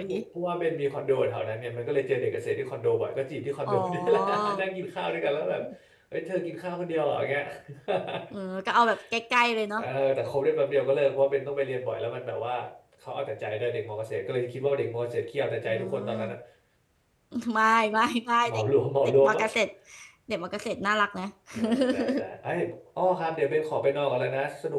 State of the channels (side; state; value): both; identical; correlation 1.00